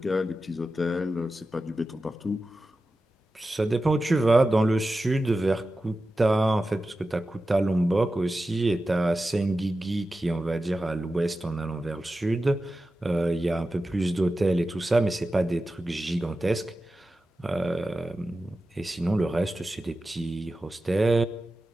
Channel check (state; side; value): normal; both; correlation 0.93